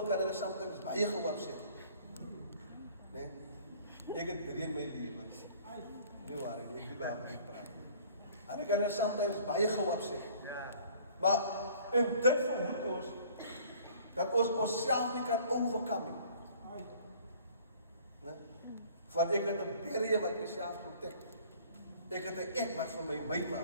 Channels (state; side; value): inverted; both; correlation -0.53